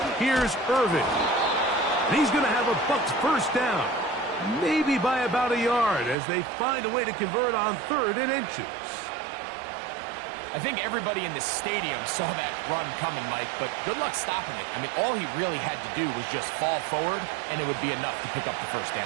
Here's Irvin. And he's going to have a Bucs first down. Maybe by about a yard as they find a way to convert on 3rd and inches. I think everybody in the stadium saw that run coming, Mike, but good luck stopping it. I mean, all he really had to do was just fall forward, and it would be enough to pick up the first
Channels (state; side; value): drops out; left; at 6.2 s